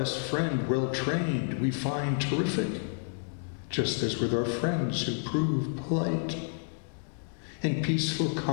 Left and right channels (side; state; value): right; silent; digital silence